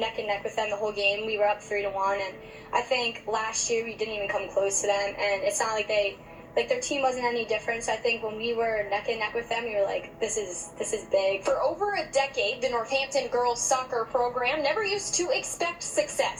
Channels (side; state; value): both; identical; correlation 1.00